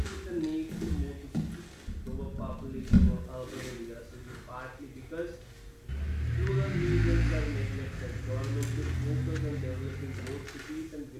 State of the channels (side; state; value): both; identical; correlation 1.00